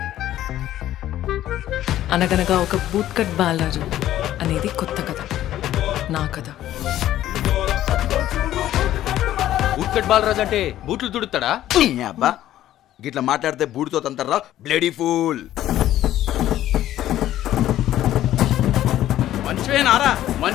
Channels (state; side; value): quieter; right; 13.1 dB